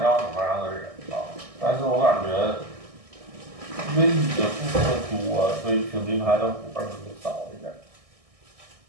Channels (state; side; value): late; left; 1.6 ms